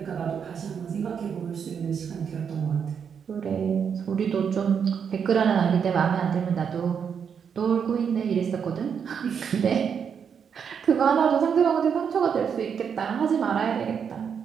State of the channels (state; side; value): quieter; left; 7.1 dB